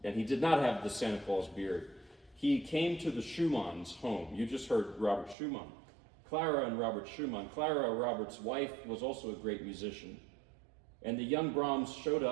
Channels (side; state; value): left; drops out; at 5.4 s